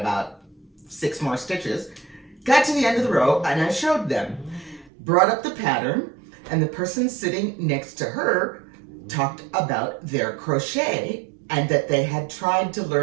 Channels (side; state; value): left; drops out; at 4.9 s